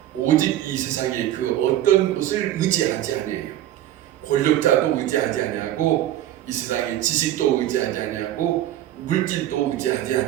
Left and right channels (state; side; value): quieter; left; 12.8 dB